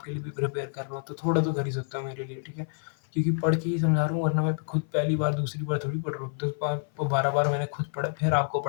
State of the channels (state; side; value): silent; right; 56 dB below the other